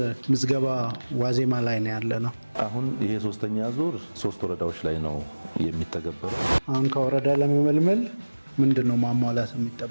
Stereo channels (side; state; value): both; inverted; correlation -1.00